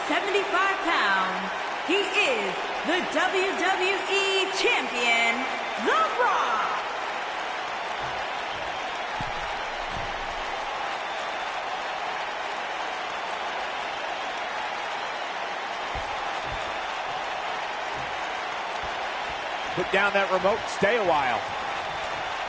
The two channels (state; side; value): identical; both; correlation 1.00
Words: pounds, he is the WWE Champion, The Rock. Put down that remote, stay a while.